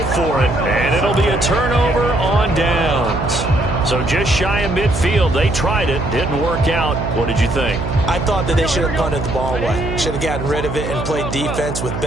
for it. And it'll be a turnover on downs. So just shy of midfield. They tried it. Didn't work out. What did you think? I thought that they should have punted the ball away. Should have gotten rid of it and played defense with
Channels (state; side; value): noise; right; hum, 5 dB below the sound